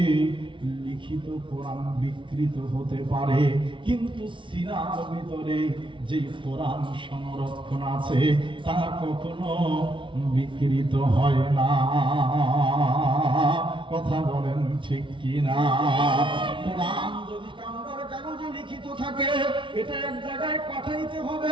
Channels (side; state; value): left; late; 0.24 ms